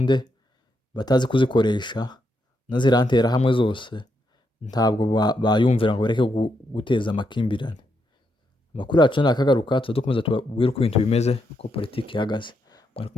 batazi kuzikoresha, na zirantera hamwe zose ntabwo bayumvira ngo bareke guteza amakimbirane. Amakuru yacu nakagaruka tuzadukomeza tubabwire uko ibintu bimeze, uko politiki ihagaze. Mwari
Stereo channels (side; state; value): both; normal; correlation 0.80